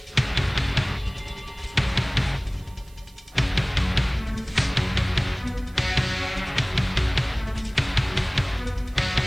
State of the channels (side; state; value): right; noise; hiss, 27 dB below the sound